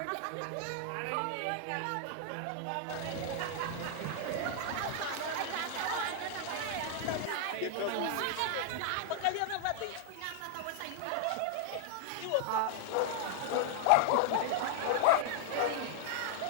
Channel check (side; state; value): both; different; correlation 0.00